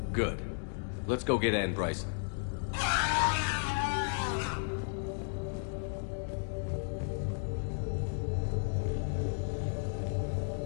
Good. Let's go get Anne Bryson.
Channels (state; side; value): silent; right; digital silence